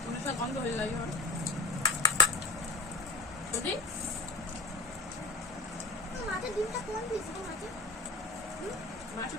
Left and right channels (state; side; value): quieter; right; 3.3 dB